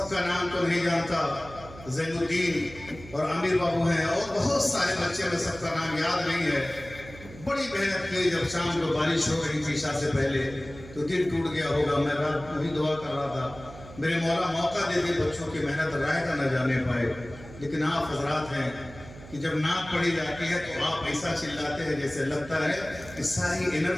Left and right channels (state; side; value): noise; right; hum, 17 dB below the sound